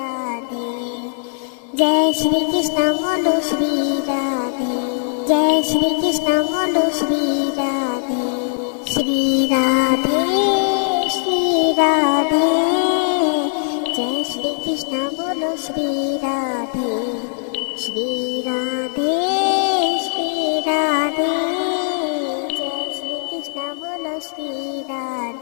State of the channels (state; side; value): silent; right; digital silence